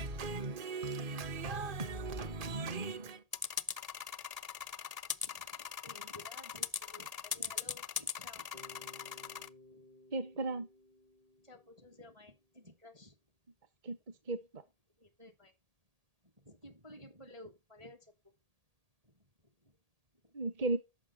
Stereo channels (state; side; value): late; left; 1.8 ms